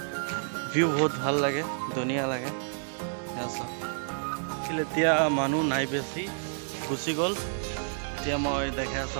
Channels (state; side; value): silent; left; 55 dB below the other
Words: ভিউ বহুত ভাল লাগে, ধুনীয়া লাগে। এয়া চাওক, এতিয়া মানুহ নাই বেছি, গুচি গ'ল। এতিয়া মই দেখাই আছো